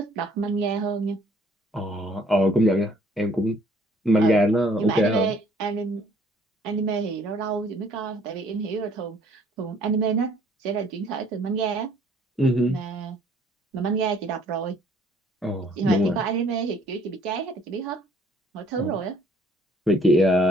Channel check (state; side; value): normal; both; correlation 0.60